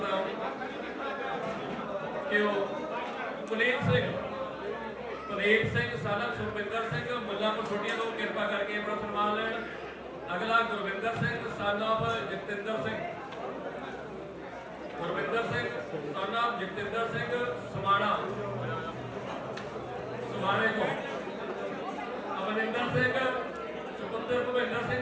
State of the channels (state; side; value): identical; both; correlation 1.00